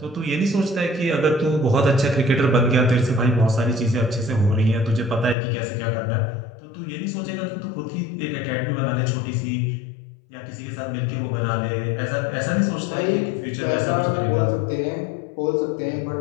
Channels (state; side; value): drops out; right; at 5.4 s